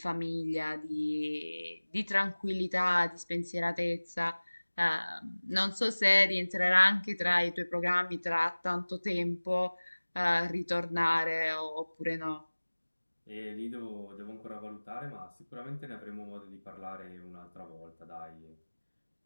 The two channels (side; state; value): both; inverted; correlation -1.00